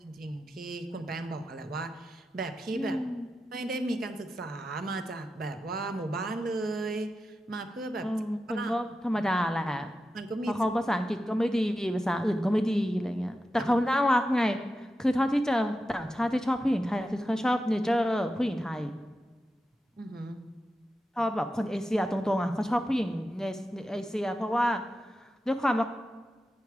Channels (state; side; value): normal; both; correlation 0.90